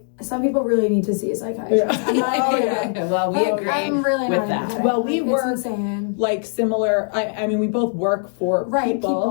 some people really need to see a psychiatrist. Well, we agree I'm really with that. Well, we work like similar. I mean, we both work for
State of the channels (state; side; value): silent; right; digital silence